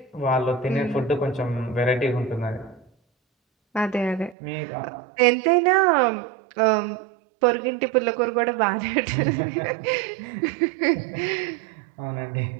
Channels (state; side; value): drops out; left; at 4.4 s